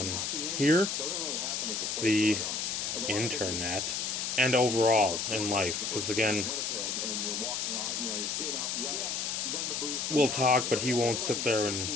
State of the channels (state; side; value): noise; left; hiss, 1 dB below the sound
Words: here, the internet, and overall in life. Because again, we'll talk, but he won't sit there